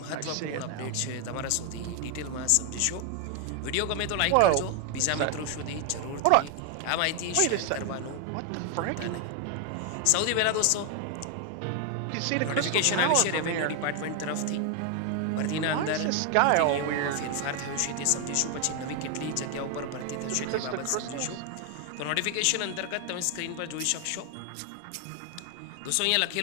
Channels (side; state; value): both; different; correlation 0.01